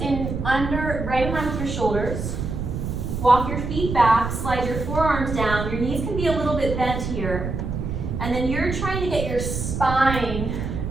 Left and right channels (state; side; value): noise; right; rumble, 4 dB below the sound